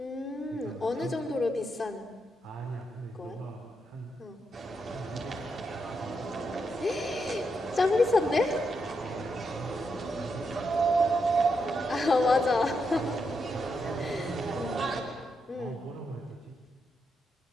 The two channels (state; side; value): normal; both; correlation 0.82